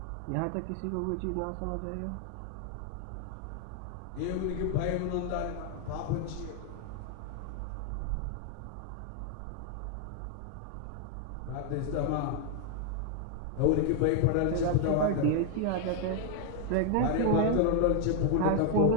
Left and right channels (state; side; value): different; both; correlation 0.00